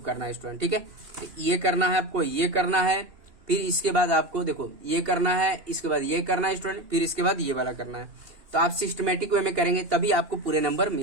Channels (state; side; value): late; left; 2.8 ms